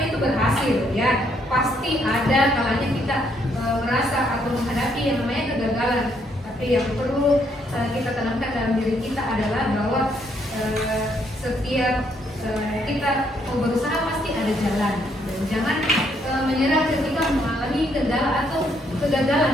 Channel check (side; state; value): both; normal; correlation 0.72